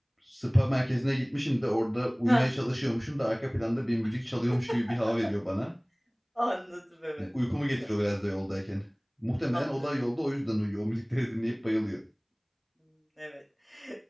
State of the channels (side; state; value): both; identical; correlation 1.00